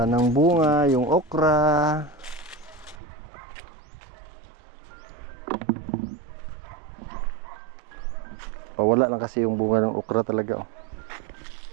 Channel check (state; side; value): drops out; left; at 3.0 s